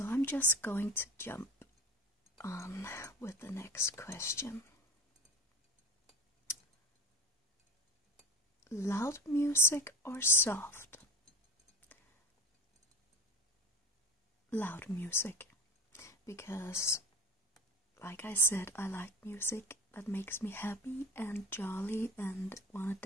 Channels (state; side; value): normal; both; correlation 0.32